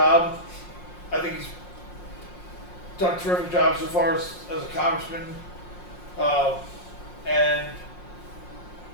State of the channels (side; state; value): right; late; 5.6 ms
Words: I think he's done a terrific job so far as a congressman. And